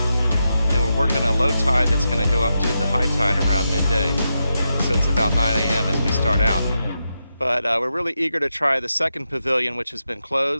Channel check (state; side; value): inverted; both; correlation -0.87